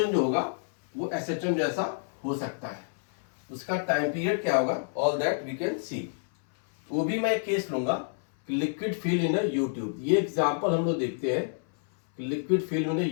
जो होगा वो SHM जैसा हो सकता है। उसका टाइम पीरियड क्या होगा, all that we can see. वो भी मैं एक केस लूंगा, liquid film in U tube. ये एग्जांपल हम लोग देखते हैं, liquid film in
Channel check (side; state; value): right; silent; 57 dB below the other